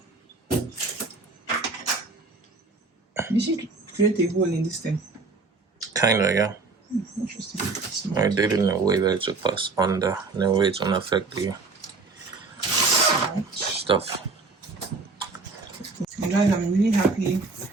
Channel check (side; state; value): left; quieter; 4.0 dB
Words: You should create a hole in this thing. Kinda, yeah. Interesting. I did it in a way that it should pass under, in a way it won't affect the stuff. guys, I'm really happy